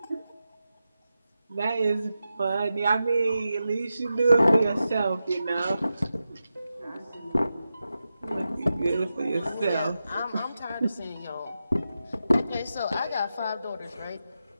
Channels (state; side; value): inverted; both; correlation -0.90